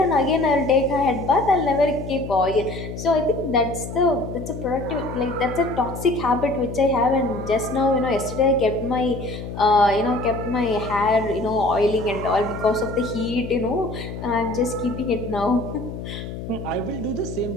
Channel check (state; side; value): noise; left; hum, 9 dB below the sound